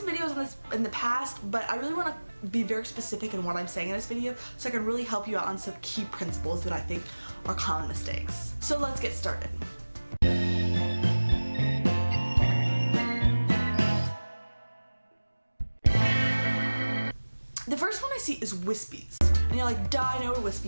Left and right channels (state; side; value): inverted; both; correlation -1.00